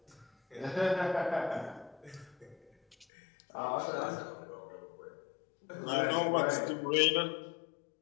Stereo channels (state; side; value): drops out; right; at 3.1 s